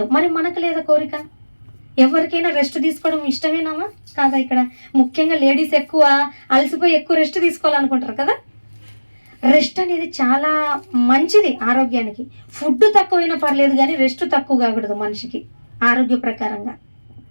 మరి మనకు లేదా కోరిక? ఎవరికైనా రెస్ట్ తీసుకోవడం ఇష్టమేనామా కాదా? ఇక్కడ ముఖ్యంగా లేడీస్ ఎక్కువ అలసిపోయి ఎక్కువ రెస్ట్ తీసుకోవాలనుకుంటారు కదా. రెస్ట్ అనేది చాలా మంచిది ఆరోగ్యానికి. ఫుడ్ తక్కువైనా పర్లేదు కానీ రెస్ట్ తక్కువ కాకూడదు మనిషికి ఆరోగ్య ప్రకారంగా.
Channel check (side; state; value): both; inverted; correlation -1.00